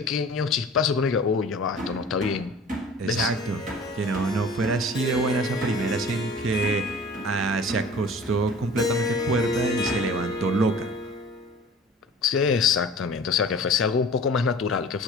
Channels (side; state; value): both; normal; correlation 0.44